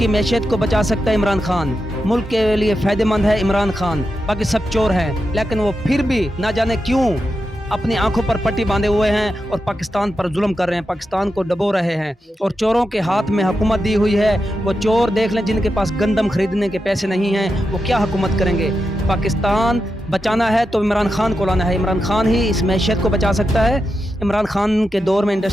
मैशियत को बचा सकता है इमरान खान, मुल्क के लिए फ़ायदेमंद है इमरान खान। बाकी सब चोर हैं, लेकिन वो फिर भी ना जाने क्यों अपनी आंखों पर पट्टी बांधे हुए हैं और पाकिस्तान पर जुल्म कर रहे हैं, पाकिस्तान को डबो रहे हैं। और चोरों के हाथ में हुकूमत दी हुई है। वो चोर देख लें, जिनके पास गंदम खरीदने के पैसे नहीं हैं, वो क्या हुकूमत करेंगे। पाकिस्तान बचाना है तो इमरान खान को लाना है, इमरान खान ही इस मैशियत को बचा सकता है। इमरान खान के दौर में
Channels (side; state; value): both; normal; correlation 0.88